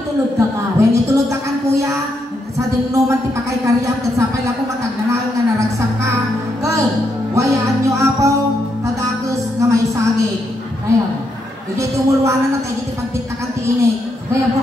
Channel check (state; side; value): normal; both; correlation 0.79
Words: itulog ka ka. When itulog ka kan kuya, sa dinuman ti pakay karyam, kat sapay lang ko matag nanawin nga naragsak ka. Girl, iwanan na tayo dito pagpitakan ti ini. Kaya po